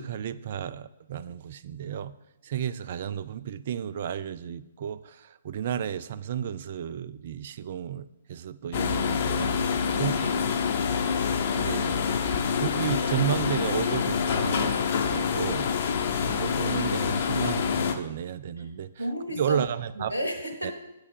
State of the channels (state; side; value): inverted; both; correlation -0.56